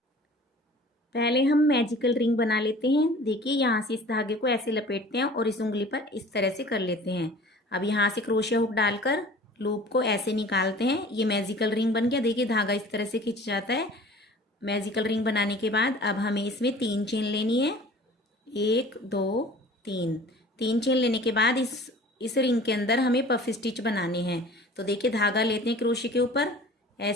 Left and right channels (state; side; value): normal; both; correlation 0.45